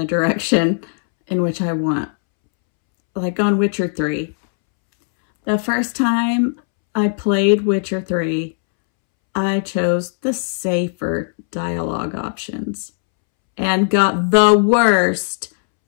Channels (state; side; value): silent; right; 67 dB below the other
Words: direction in which I want. Like on Witcher 3. The first time I played Witcher 3, I chose the safer dialogue options and got the worst